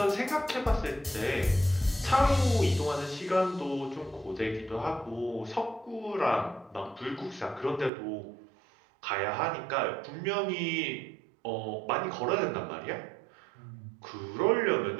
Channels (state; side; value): drops out; left; at 7.9 s